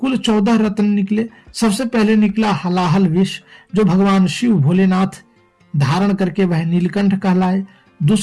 14 रत्न निकले। सबसे पहले निकला हलाहल विष, जो भगवान शिव भोलेनाथ धारण करके वह नीलकंठ कहलाए।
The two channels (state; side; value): identical; both; correlation 1.00